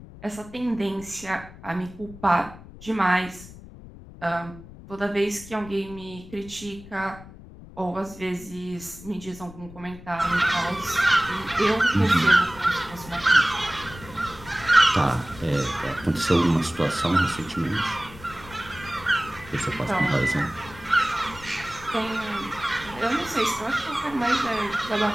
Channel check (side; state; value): left; noise; rumble, 17 dB below the sound